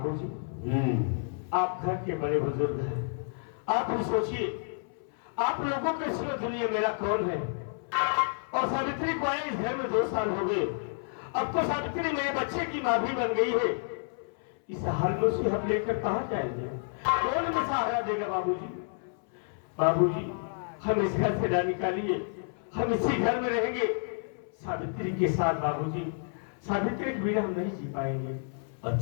आप घर के बड़े बुजुर्ग हैं, आप भी सोचिए आप लोगों के सिवा दुनिया मेरा कौन है। और सावित्री को आए इस घर में 2 साल हो गए। अब तो सावित्री मेरे बच्चे की माँ भी बन गई है। इस हाल में उसे हम लेकर कहाँ जाएंगे? कौन हमें सहारा देगा बाबूजी? बाबूजी, हम इस घर से ना निकालिए, हम इसी घर में रहेंगे सावित्री के साथ। बाबूजी, सावित्री के बिना हम नहीं जी पाएंगे।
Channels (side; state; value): right; silent; 58 dB below the other